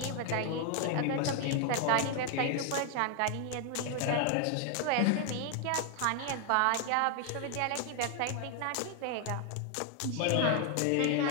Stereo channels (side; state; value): both; different; correlation 0.00